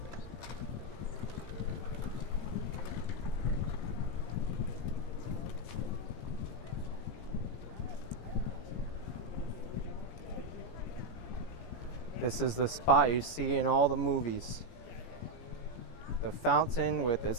This is the spot you see in all the movies. The fountain with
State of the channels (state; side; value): late; right; 17 ms